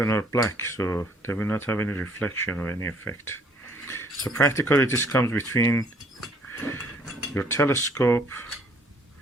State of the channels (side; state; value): both; normal; correlation 0.61